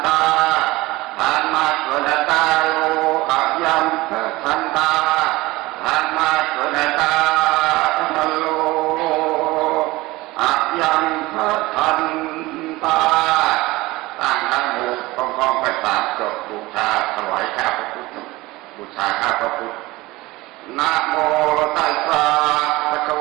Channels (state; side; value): quieter; left; 20.1 dB